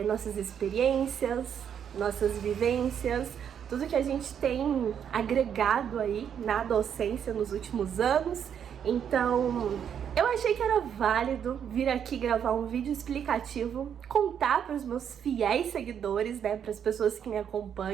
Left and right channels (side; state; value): left; quieter; 8.4 dB